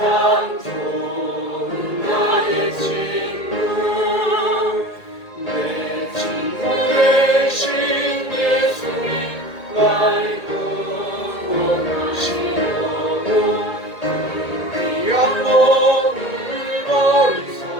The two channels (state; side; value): late; right; 2.2 ms